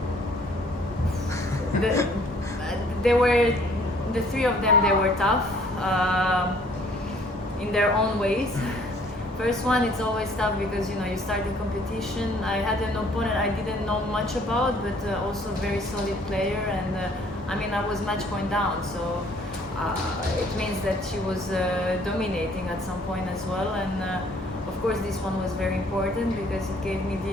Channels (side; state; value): both; normal; correlation 0.59